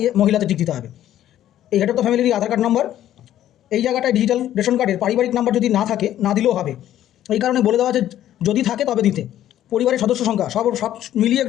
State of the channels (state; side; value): quieter; right; 12.1 dB